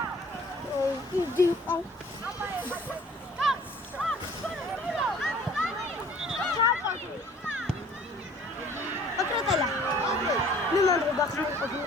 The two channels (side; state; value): both; normal; correlation 0.53